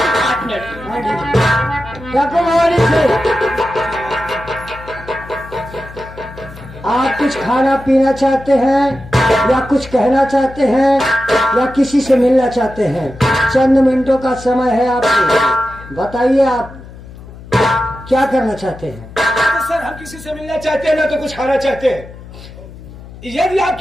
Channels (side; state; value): left; noise; hum, 17 dB below the sound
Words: 8 मिनट। आप कुछ खाना पीना चाहते हैं या कुछ कहना चाहते हैं या किसी से मिलना चाहते हैं? चंद मिनटों का समय है आपको, बताइए आप क्या करना चाहते हैं? तो सर हम किसी से मिलना चाहते हैं ना तो कुछ खाना चाहते हैं। यदि